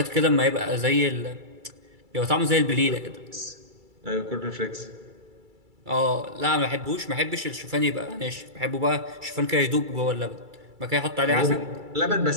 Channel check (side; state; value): left; late; 2.3 ms